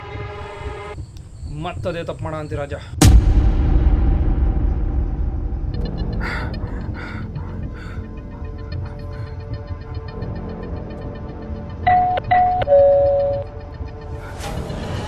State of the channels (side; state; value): both; identical; correlation 1.00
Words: ಮತ್ತದೇ ತಪ್ಪು ಮಾಡ ಅಂತಿ ರಾಜ.